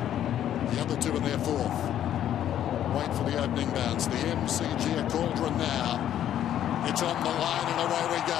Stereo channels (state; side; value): quieter; right; 10.9 dB